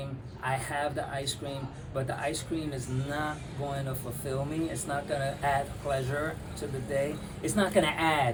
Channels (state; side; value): identical; both; correlation 1.00